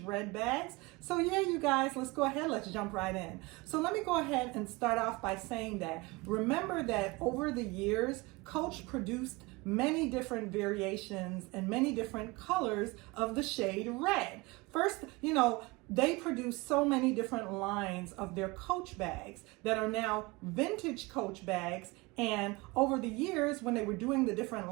red bags. So yeah, you guys, let's go ahead, let's jump right in. So let me go ahead and start off by saying that, remember that over the years, Coach produced many different variations and many different colors of the shade red. First, they produce so many different lines of their Coach bags that are now vintage Coach bags. And over the years, when they were doing the different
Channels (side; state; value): left; quieter; 23.9 dB